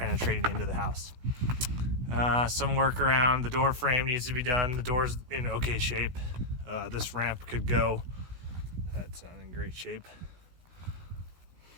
into the house. Some work around the door frame needs to be done. The door's in okay shape. This ramp could go. That's not in great shape.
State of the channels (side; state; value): left; late; 16 ms